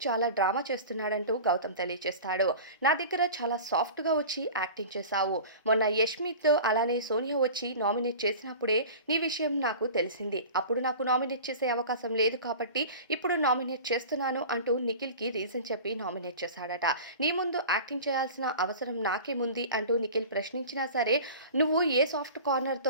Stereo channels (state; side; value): inverted; both; correlation -0.37